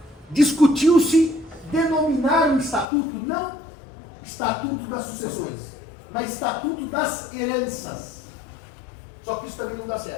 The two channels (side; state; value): right; drops out; at 2.9 s